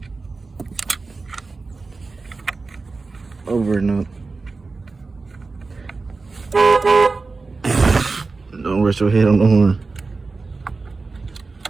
Over and up. Don't rest your head on the horn.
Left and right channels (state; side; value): quieter; left; 3.9 dB